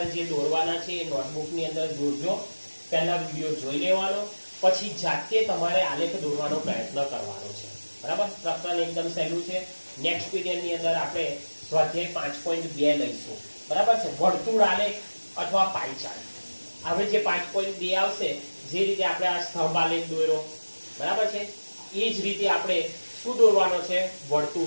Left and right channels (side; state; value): both; inverted; correlation -1.00